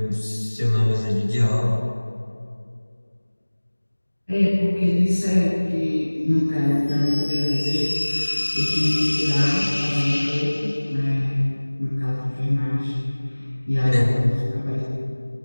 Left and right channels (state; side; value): inverted; both; correlation -1.00